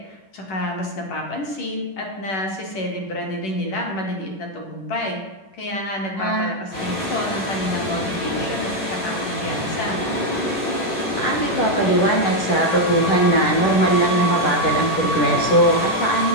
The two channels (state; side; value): late; right; 10 ms